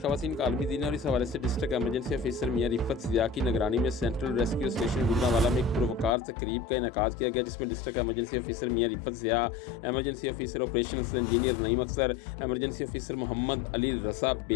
خواتین کا عالمی دن ہے اور اس حوالے سے district emergency officer Mian Rifat Zia کی نگرانی میں سینٹرل ریسکیو اسٹیشن گجرانوالہ میں ایک پروقار تقریب کا انعقاد کیا گیا، جس میں district emergency officer Mian Rifat Zia, emergency officer operations engineer Naeem Akhtar, emergency officer Muhammad Ali Raza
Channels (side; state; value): right; drops out; at 6.2 s